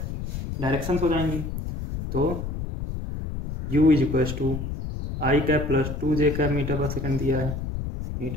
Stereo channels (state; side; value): noise; left; rumble, 5 dB below the sound